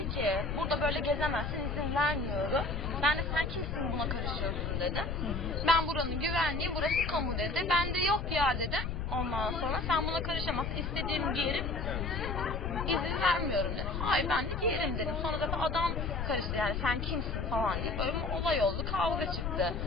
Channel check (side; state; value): left; noise; rumble, 3 dB below the sound